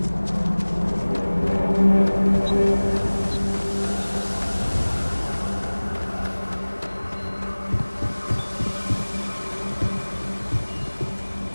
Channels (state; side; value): inverted; both; correlation -1.00